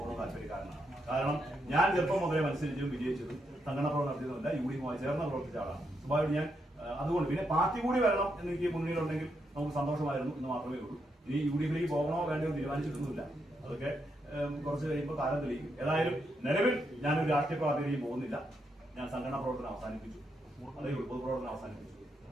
താല്പര്യക്കാരനാണ്. കാരണം ഞാൻ ചെറുപ്പം മുതലേ മത്സരിച്ചും വിജയിച്ചതും സംഘടന പ്രവർത്തനം നടത്തിയതുമല്ല, UDF-മായി ചേർന്ന് പ്രവർത്തിച്ച ആളാണ്. സ്വാഭാവികം ഞാൻ അതുകൊണ്ട് പിന്നെ പാർട്ടി കൂടി വരണം എന്നെനിക്ക് മുന്നിലുണ്ടെങ്കിൽ നമുക്ക് സന്തോഷമായിരുന്നു എന്ന് മാത്രമേ ഉള്ളൂ. ഇനി UDF-ലേക്ക് പോകണോ വേണ്ടയോ തീരുമാനിച്ചിട്ടൊന്നുമില്ല. അതൊക്കെ കുറച്ച് കഴിയുമ്പോൾ കാലം തെളിയിക്കും. ഏതായാലും നിലവിൽ ഞാനൊരു രാഷ്ട്രീയ പാർട്ടിയിലേക്ക് പോകുന്നില്ല. ഞാൻ സംഘടനാ പ്രവർത്തനം അവസാനിപ്പിച്ചു, അല്ലെങ്കിൽ പൊതുപ്രവർത്തനം അവസാനിപ്പിച്ചു.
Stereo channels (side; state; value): both; normal; correlation 0.80